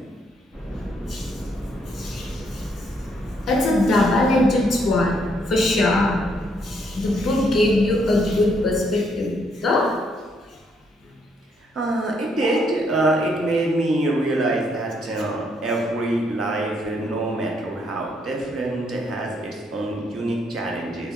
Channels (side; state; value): both; normal; correlation 0.72